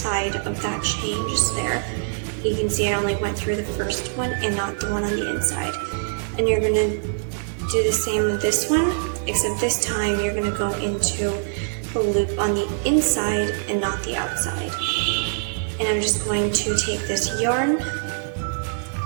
of that chain just there. You can see I only went through the first one and not the one on the inside. And you're going to do the same with this one, except this time you're going to go into the loop on the inside and not the outside. And I'm just going to take this yarn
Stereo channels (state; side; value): silent; left; digital silence